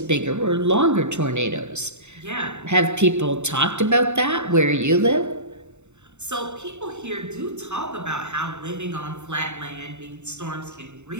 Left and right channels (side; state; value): left; late; 0.83 ms